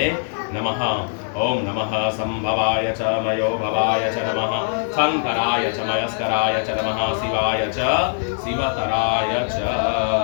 नमः। ओम नमः संभवाय च मयो भवाय च नमः शंकराय च मयस्कराय च नमः शिवाय च शिवतराय च।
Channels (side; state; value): right; silent; digital silence